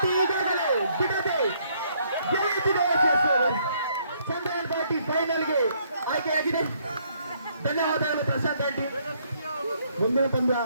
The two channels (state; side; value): inverted; both; correlation -0.68